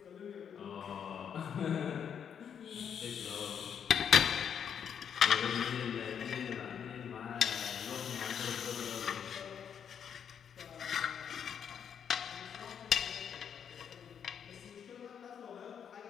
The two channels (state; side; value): quieter; right; 8.0 dB